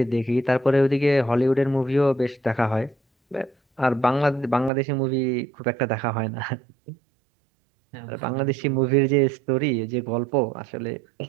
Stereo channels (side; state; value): left; drops out; at 4.7 s